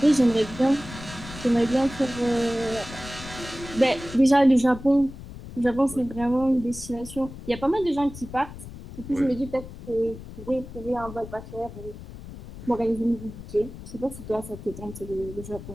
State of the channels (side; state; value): left; noise; rumble, 14 dB below the sound